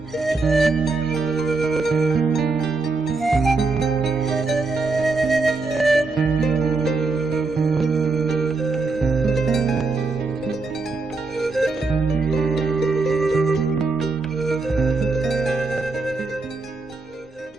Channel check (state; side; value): quieter; left; 3.8 dB